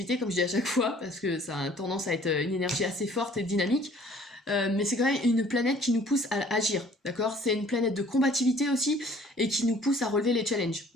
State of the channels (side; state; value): both; normal; correlation 0.54